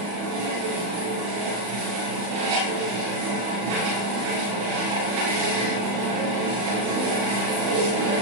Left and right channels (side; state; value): left; late; 34 ms